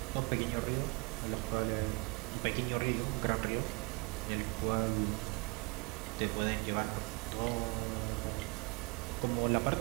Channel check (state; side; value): quieter; left; 29.1 dB